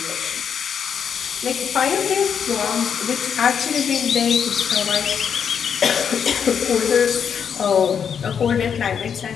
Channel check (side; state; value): right; quieter; 7.4 dB